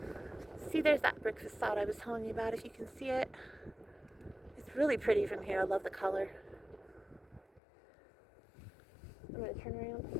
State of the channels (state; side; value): drops out; right; at 7.6 s